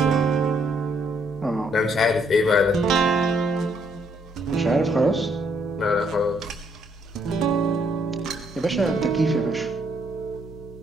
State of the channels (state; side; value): normal; both; correlation 0.70